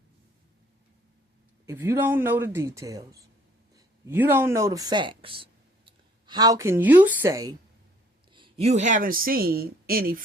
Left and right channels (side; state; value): both; normal; correlation 0.60